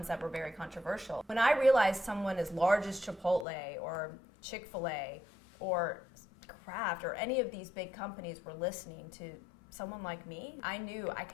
that were very controversial. When I realized someone as large as Chipotle or Chick-fil-A or Kraft or any of these big companies were listening to someone like me, I knew I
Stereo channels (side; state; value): right; drops out; at 3.5 s